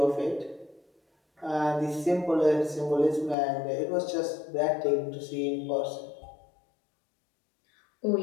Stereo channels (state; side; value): drops out; right; at 3.4 s